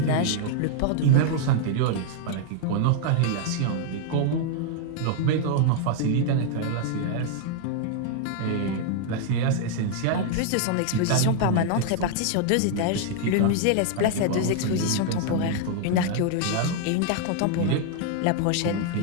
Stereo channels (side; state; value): both; different; correlation 0.00